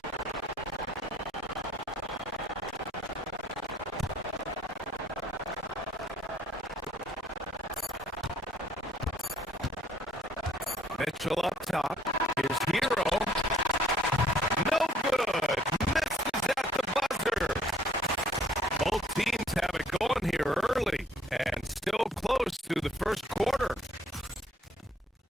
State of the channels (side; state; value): both; normal; correlation 0.61